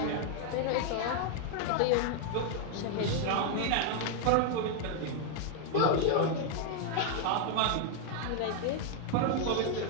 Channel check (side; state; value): both; different; correlation 0.00